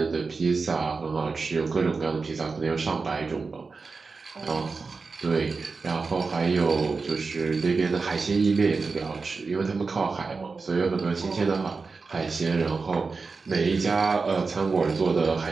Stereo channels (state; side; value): quieter; left; 4.4 dB